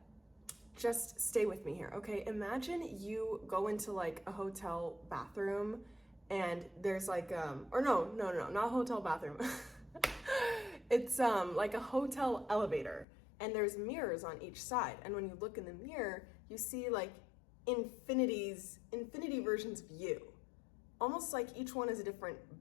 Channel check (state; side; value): drops out; right; at 13.1 s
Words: just stay with me here, okay? Imagine you go into like a hotel bathroom and there's like, or no, not hotel bathroom. It's like a hotel elevator and there's mirrors on each side. And when you look in the mirror, you see like infinity versions of you. Almost like each one is a